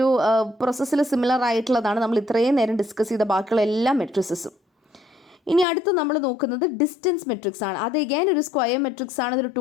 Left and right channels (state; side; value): drops out; right; at 5.7 s